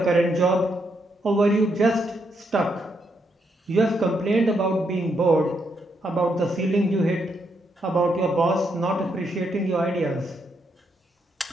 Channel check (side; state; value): both; normal; correlation 0.78